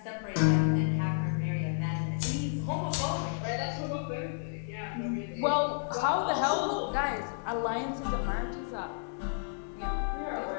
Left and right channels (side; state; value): right; silent; digital silence